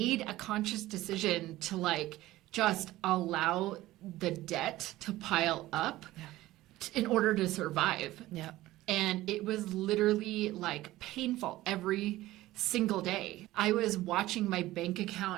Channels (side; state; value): left; quieter; 16.6 dB